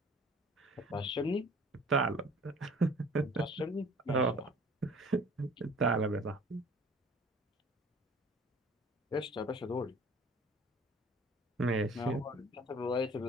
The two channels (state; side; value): normal; both; correlation 0.49